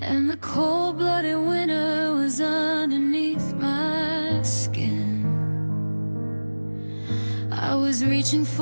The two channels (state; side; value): inverted; both; correlation -1.00